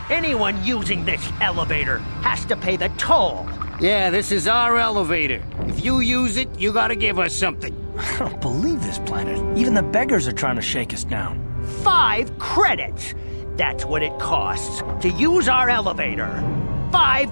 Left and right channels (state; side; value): inverted; both; correlation -1.00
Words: Anyone using this elevator has to pay the toll. Yeah, this is our elevator. If you use it, you gotta give us something. I don't believe this planet. Even the beggars are trying to shake us down. 5 credits! That's what it costs to use our elevator.